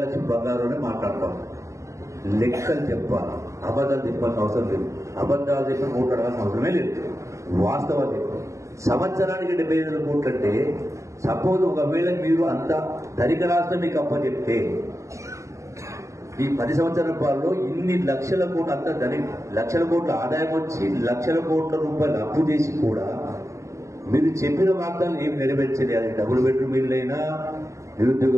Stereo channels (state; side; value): late; left; 0.15 ms